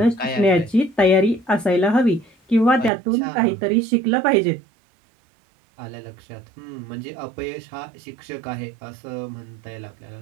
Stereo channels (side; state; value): left; drops out; at 2.9 s